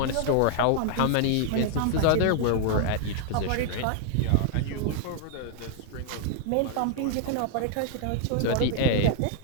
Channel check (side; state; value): both; different; correlation -0.01